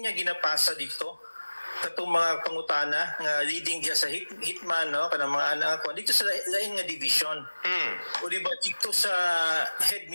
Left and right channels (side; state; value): both; inverted; correlation -1.00